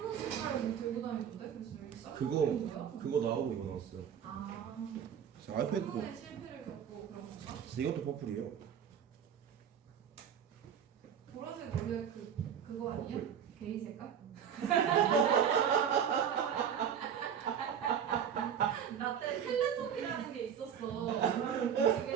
색깔 뭐 들고 다니던데? 그래서 여기 쌍문 그거 나오고 이거 나왔어요. 아. 자, 아이패드도. 쌍문의 실패를 겪고 그런 건가? 이것도 퍼플이에요. 보라색 원래 그거 아니야? 게이 색깔? 나 때 텔레토비라는 게 있었어.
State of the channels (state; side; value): quieter; left; 8.3 dB